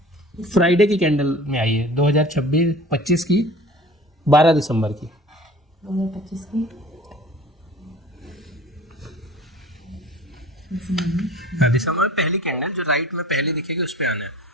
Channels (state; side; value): normal; both; correlation 0.44